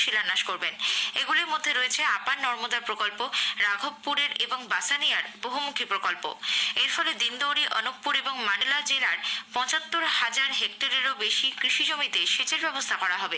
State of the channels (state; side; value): identical; both; correlation 1.00